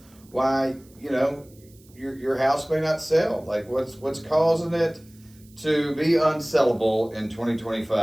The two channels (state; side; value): noise; right; hiss, 28 dB below the sound